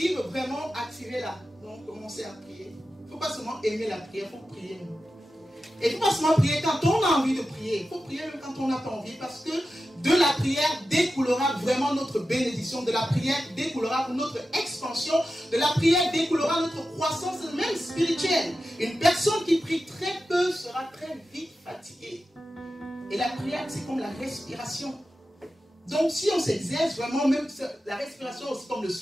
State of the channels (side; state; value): both; normal; correlation 0.92